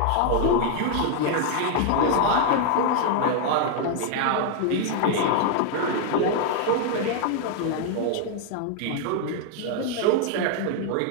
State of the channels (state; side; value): different; both; correlation 0.00